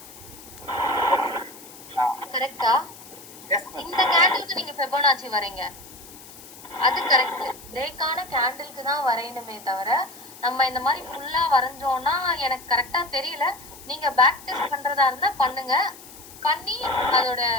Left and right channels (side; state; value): left; noise; hiss, 18 dB below the sound